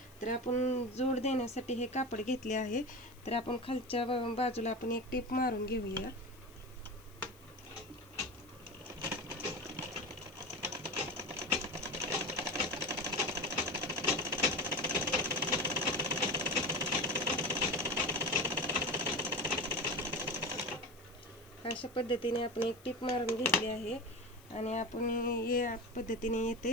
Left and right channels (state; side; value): noise; left; hiss, 26 dB below the sound